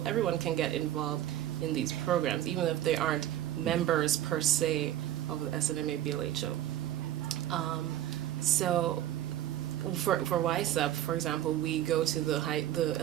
everyone can get involved in these programs, even if they aren't members per se of the SNMA BLHO. So for YSEP, for example, we go to the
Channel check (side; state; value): left; quieter; 12.5 dB